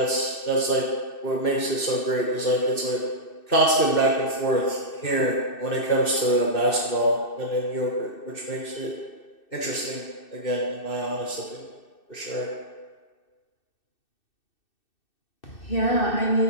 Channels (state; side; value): late; right; 2.6 ms